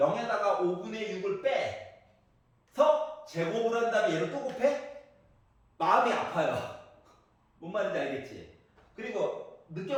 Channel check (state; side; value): identical; both; correlation 1.00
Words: 5분의 6을 빼서 제곱을 한 다음에 얘를 또 곱해? 마음이 아파요. 뭔 말인지 알겠지? 그리고